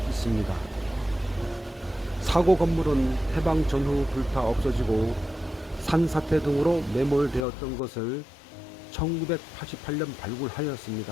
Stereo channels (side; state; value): right; drops out; at 7.5 s